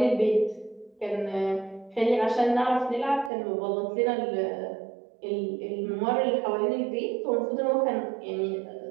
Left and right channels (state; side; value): drops out; left; at 3.3 s